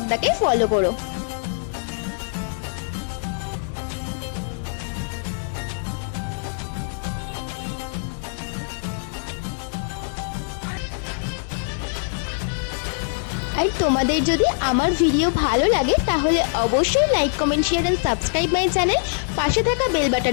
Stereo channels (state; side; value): silent; right; digital silence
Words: ফলো করো। আর তোমাদের যদি আমার ভিডিও ভালো লাগে তাহলে অবশ্যই like comment share and subscribe my channel. পাশে থাকা বেল